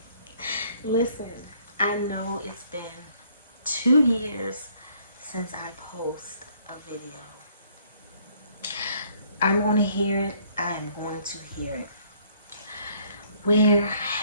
Listen, I know it's been 2 years since I post a video. I'm going to hear it. I'm going to hear it. Where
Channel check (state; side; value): inverted; both; correlation -0.62